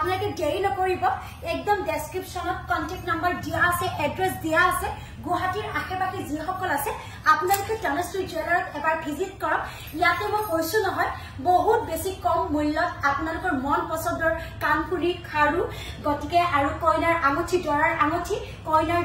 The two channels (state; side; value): identical; both; correlation 1.00